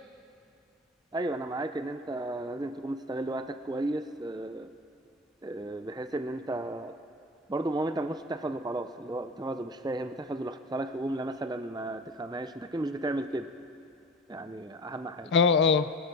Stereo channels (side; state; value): both; normal; correlation 0.36